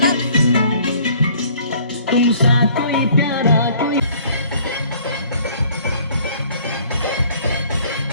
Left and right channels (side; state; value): both; inverted; correlation -0.56